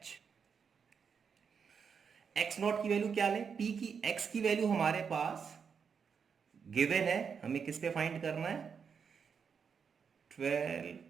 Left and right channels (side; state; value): left; quieter; 6.4 dB